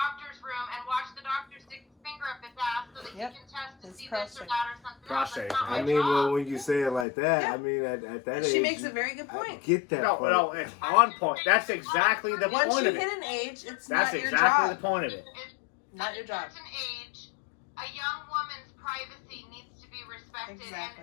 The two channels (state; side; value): drops out; right; at 7.1 s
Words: room and watch the doctor stick his finger up his ass so that Yep. can test to It's see this prostate. or that or something Prostate. else. That's not I my mean, well, job. when you say it like that, Yeah. I mean, at that age, She makes a very good I point. get that No, part. no, it's on point. That's exactly the Once point you of hit it. an age, it's That's not your exactly the job. point of it. Not At your a job. certain age, a young woman's privacy needs to be respected.